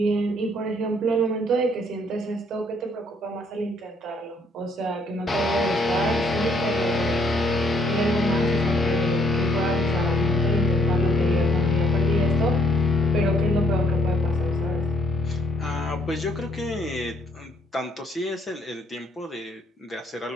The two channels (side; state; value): both; normal; correlation 0.68